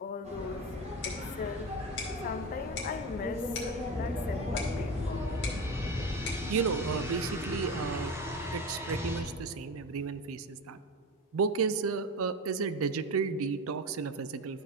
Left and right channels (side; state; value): both; normal; correlation 0.24